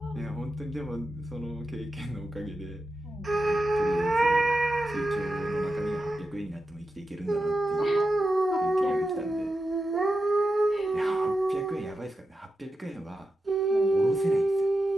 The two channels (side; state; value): both; normal; correlation 0.90